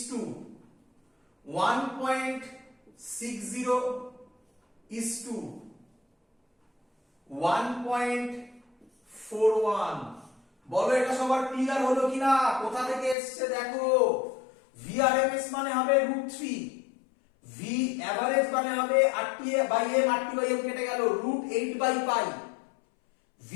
to 1.60 is to 1.41। বলো এটা সবার ক্লিয়ার হলো কিনা? কোথা থেকে এসছে দেখো, VRMS মানে হবে √3, V অ্যাভারেজ মানে হবে RT/m, RT/m কেটে গেল, √8/π,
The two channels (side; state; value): right; drops out; at 13.2 s